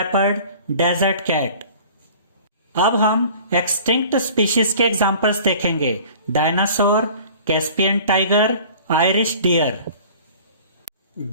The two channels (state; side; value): inverted; both; correlation -0.46